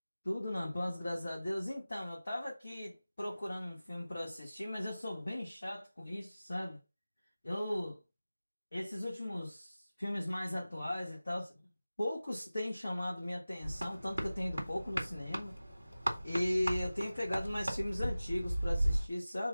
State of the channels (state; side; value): inverted; both; correlation -0.97